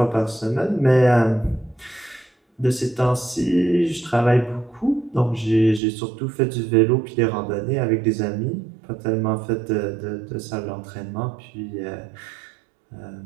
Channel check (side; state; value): left; drops out; at 5.8 s